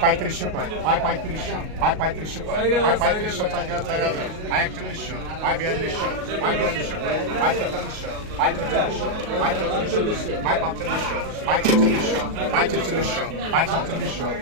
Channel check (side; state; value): left; late; 38 ms